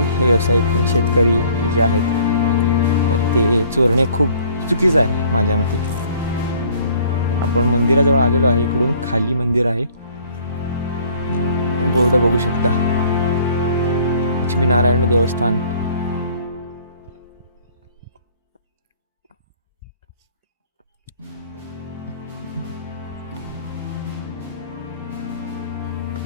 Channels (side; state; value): both; inverted; correlation -0.56